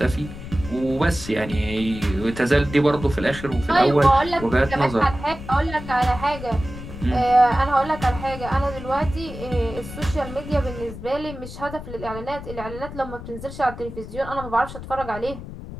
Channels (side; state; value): left; noise; rumble, 11 dB below the sound